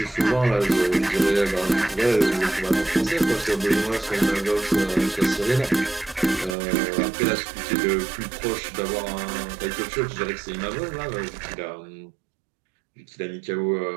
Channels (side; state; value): left; drops out; at 6.6 s